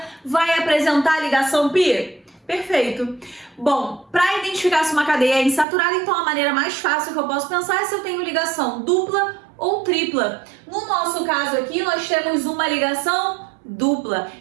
vai apresentar ligação pi? Perfeito. Bom, para identificar se uma cadeia é insaturada, então a maneira mais fácil que eu posso pensar é se eu tenho ligação dupla ou tripla. No nosso caso aqui, nós temos uma ligação dupla.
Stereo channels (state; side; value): drops out; left; at 5.7 s